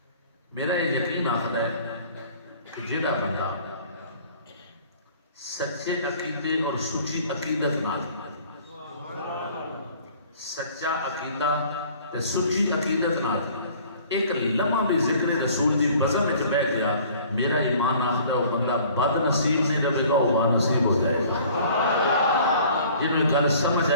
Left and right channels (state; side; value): inverted; both; correlation -0.52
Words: میرا یہ یقین آخر ہے کہ جیڑا بندہ سچے عقیدے اور سچی عقیدت نال، سچا عقیدہ تے سچی عقیدت نال ایک لمحہ بھی ذکر رسول دی بزم وچ بیٹھ گیا، میرا ایمان آخر ہے وہ بندہ بد نصیب نہیں رہے گا، وہ با نصیب ہو جائے گا۔ جنہوں گل سمجھ